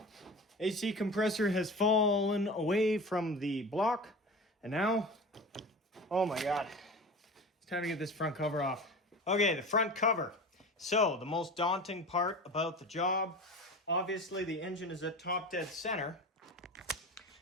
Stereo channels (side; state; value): both; normal; correlation 0.33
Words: AC compressor has fallen away from the block, and now, oh my god, it's time to get this front cover off. Okay, the front cover. So, the most daunting part about the job, obviously the engine is at top dead center.